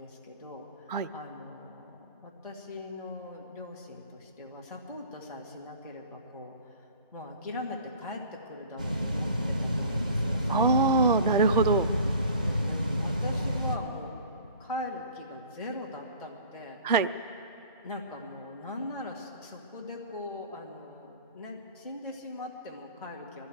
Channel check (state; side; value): inverted; both; correlation -0.46